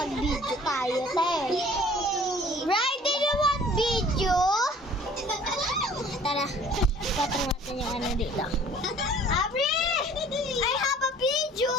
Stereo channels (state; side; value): normal; both; correlation 0.51